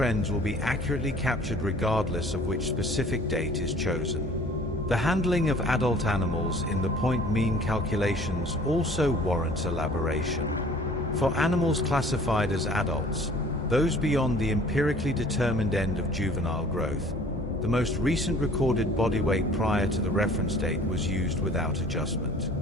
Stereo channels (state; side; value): normal; both; correlation 0.51